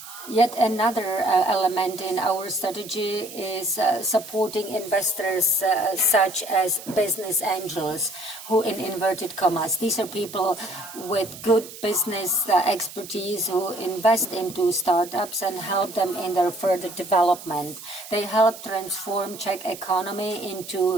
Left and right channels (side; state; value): right; noise; hiss, 14 dB below the sound